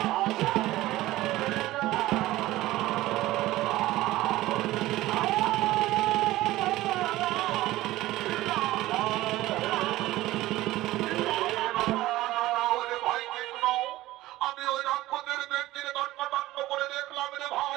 আমি ওই রাক্ষসের ব্যক্তির দণ্ড করে দেখলাম রে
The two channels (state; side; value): quieter; left; 16.8 dB